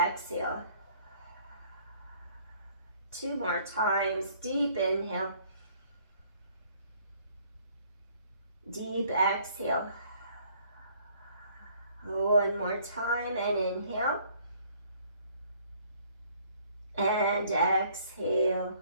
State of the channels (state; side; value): inverted; both; correlation -0.61